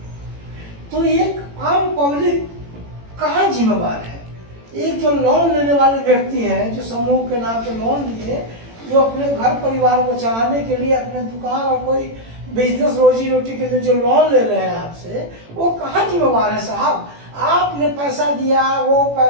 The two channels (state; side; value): late; left; 18 ms